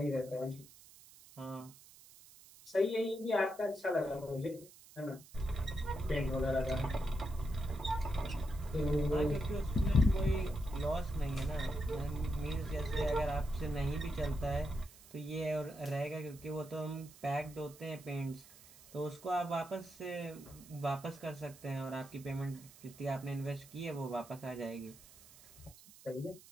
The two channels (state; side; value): noise; right; hiss, 21 dB below the sound